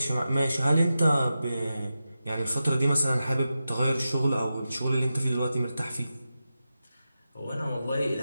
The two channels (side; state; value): both; inverted; correlation -0.91